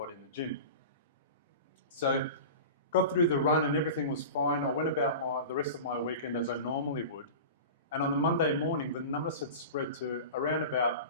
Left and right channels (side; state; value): both; inverted; correlation -0.32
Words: in the gym. So got through the run and everything was fine. I went about the rest of my weekend as I normally would. And on the Monday morning, the numbness had spread to around about